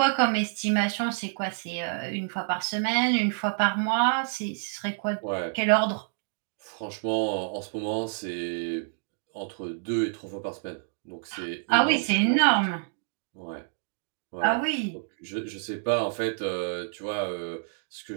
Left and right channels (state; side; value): silent; left; digital silence